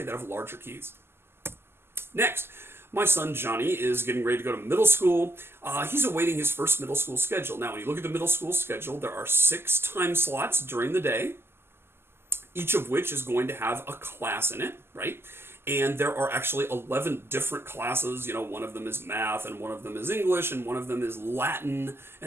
that have larger keys. Next, my son Johnny is getting ready to go to middle school. He's awaiting his first middle school schedule. Now, when you look at the middle school schedule, there are 6 time slots during the day, each of which is going to have a class in it, right? And there are actually 11 different classes. You know, one of them is math, and one of them is English, and one of them is Latin,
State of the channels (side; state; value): left; late; 0.12 ms